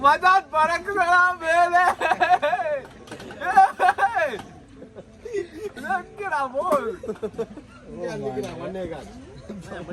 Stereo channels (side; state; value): both; identical; correlation 1.00